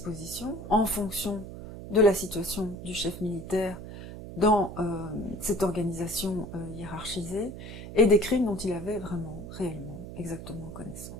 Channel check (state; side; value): noise; right; hum, 11 dB below the sound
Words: en fonction de la situation du chef militaire dans cette organisation hiérarchisée, et des crimes dont il avait vraiment, réellement, exactement